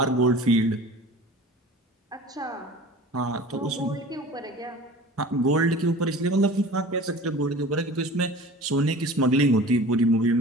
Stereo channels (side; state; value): both; normal; correlation 0.40